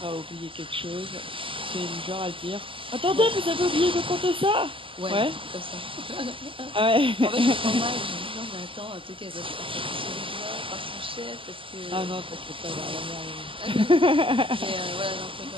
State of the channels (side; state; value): left; late; 0.25 ms